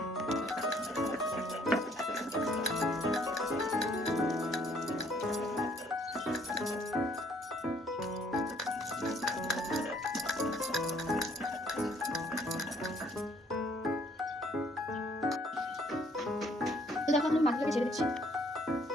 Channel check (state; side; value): normal; both; correlation 0.63